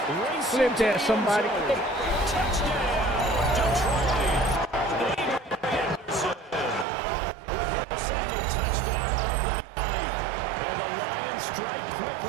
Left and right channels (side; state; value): left; drops out; at 6.9 s